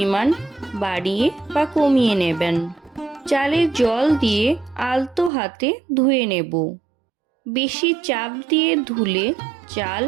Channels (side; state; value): left; drops out; at 5.3 s